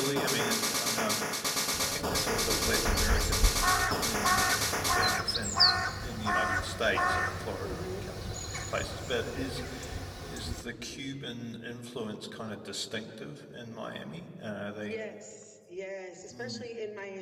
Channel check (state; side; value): identical; both; correlation 1.00